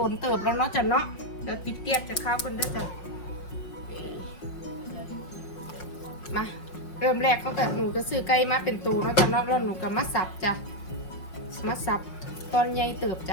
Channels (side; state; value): right; late; 5.5 ms